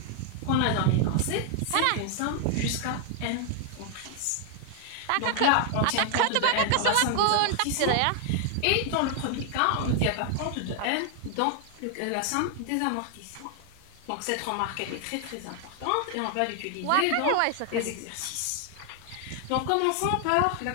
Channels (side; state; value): both; different; correlation 0.00